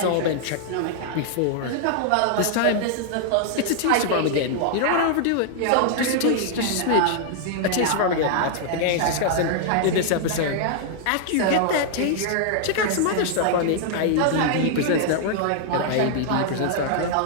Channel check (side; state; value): both; different; correlation -0.01